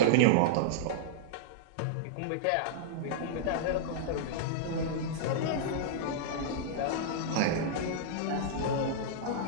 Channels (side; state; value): both; different; correlation -0.02